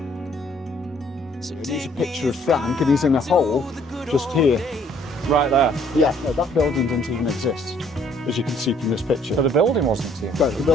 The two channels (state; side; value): normal; both; correlation 0.62